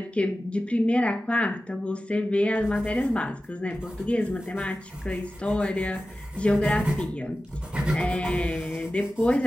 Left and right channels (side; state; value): both; normal; correlation 0.94